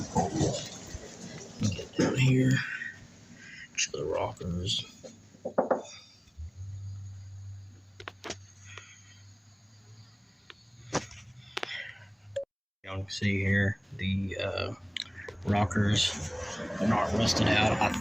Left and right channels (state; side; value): identical; both; correlation 1.00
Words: Get down here. Show the rockers. Y'all can see here the rockers are not rusted out. I